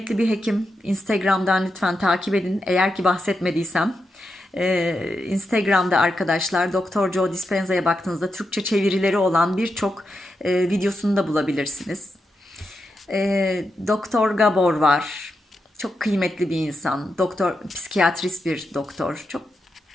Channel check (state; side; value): normal; both; correlation 0.86